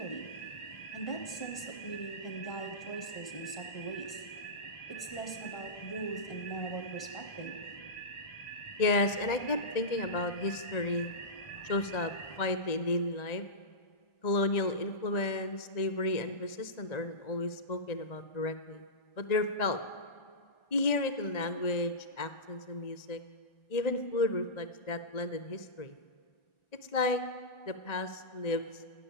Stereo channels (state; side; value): late; right; 1.9 ms